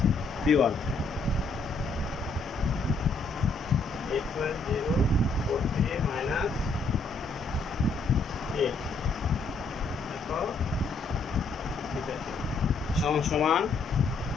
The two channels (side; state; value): right; quieter; 3.5 dB